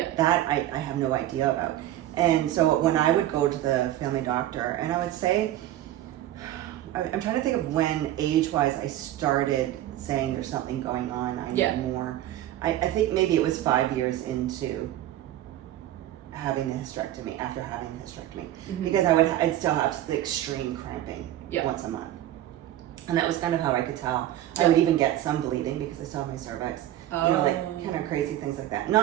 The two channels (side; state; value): left; quieter; 13.3 dB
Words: That I have no idea about. And so when I would go to the family doctor, and I would say, I'm trying to think of when age-wise I started saying there's something going on, I need more. I think maybe it was 5 years into having the hysterectomy, after having the hysterectomy, because I'd still have the extreme cramping once a month. And that was kind of how I could tell. I would even get some bleeding because I saw my cervix. You know, like kind of crazy things like that.